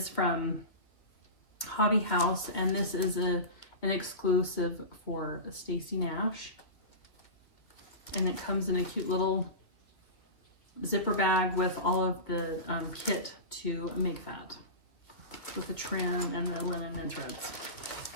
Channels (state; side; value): late; right; 2.3 ms